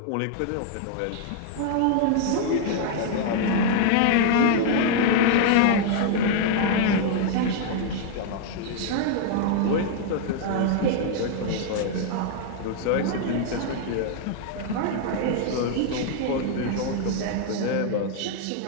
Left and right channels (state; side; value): different; both; correlation 0.00